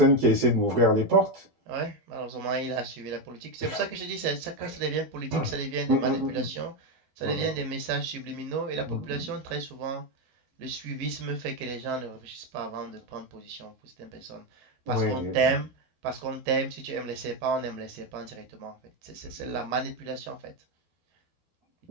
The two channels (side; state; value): left; late; 12 ms